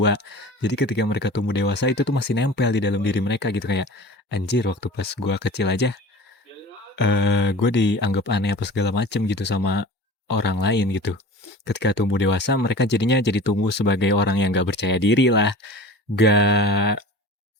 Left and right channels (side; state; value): both; normal; correlation 0.38